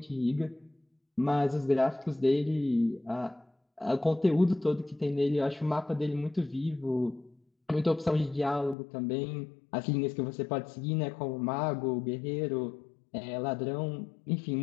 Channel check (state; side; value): drops out; right; at 8.8 s